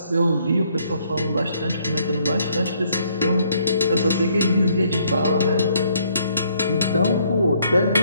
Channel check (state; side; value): inverted; both; correlation -0.67